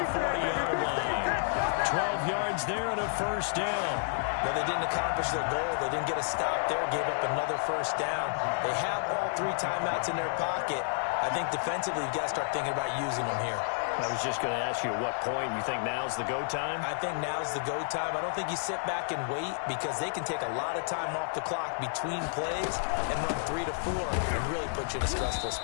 40-yard line. 12 yards there and a first down. Well, they didn't accomplish their goal. They didn't get a stop there, gave up another first down. They have all 3 timeouts in their pocket. I think defensively you've got to start thinking about using them here. I was just going to ask you at what point you think now's the go time? I think now's the go time. I don't think you sit back and wait because they can take a lot of time off the clock between plays and run 3 to 4 and really put you in a stressful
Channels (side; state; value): right; silent; 57 dB below the other